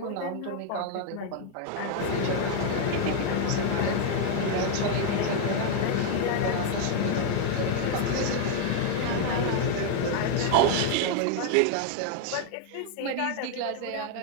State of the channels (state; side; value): different; both; correlation 0.00